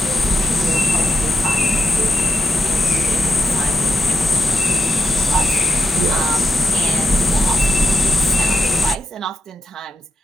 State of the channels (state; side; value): normal; both; correlation 0.83